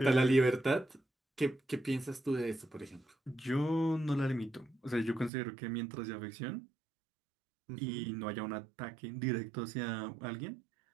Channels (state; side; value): drops out; left; at 5.3 s